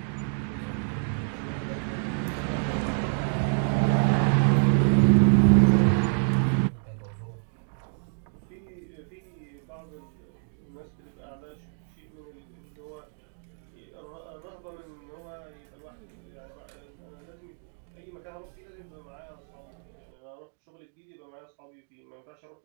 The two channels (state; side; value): silent; left; 58 dB below the other